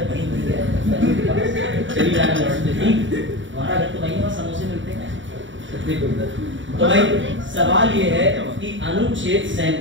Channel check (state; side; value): late; left; 0.55 ms